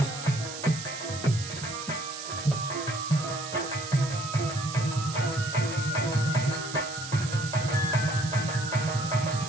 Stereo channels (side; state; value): right; noise; hiss, 9 dB below the sound